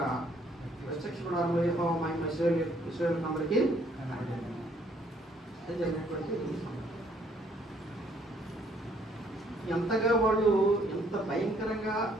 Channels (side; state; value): both; normal; correlation 0.65